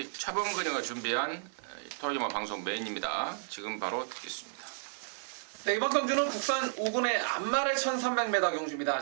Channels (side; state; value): left; silent; digital silence